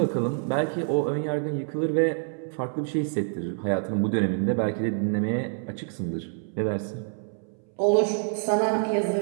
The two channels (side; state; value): left; silent; 60 dB below the other